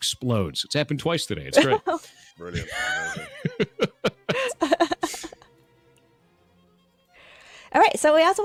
It's happened twice today. It's great. Brilliant. All right, so we also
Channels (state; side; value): identical; both; correlation 1.00